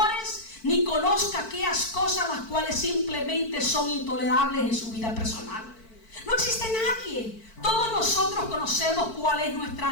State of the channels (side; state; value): right; late; 4.5 ms